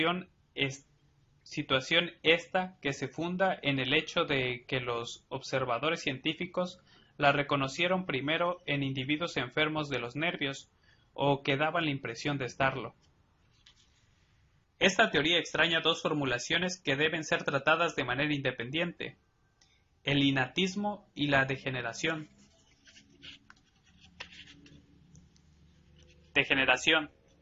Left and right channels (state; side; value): identical; both; correlation 1.00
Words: esta que se funda en el hecho de que los observadores científicos la reconocieron primero en individuos enfermos de los nervios o que daban la impresión de estarlo. Esta teoría extraña dos formulaciones que deben ser tratadas de manera independiente: el innatismo y la degeneración. Degeneración.